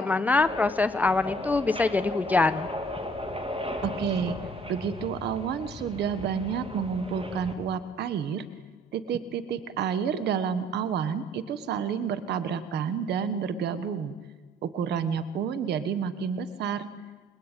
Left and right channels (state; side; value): normal; both; correlation 0.57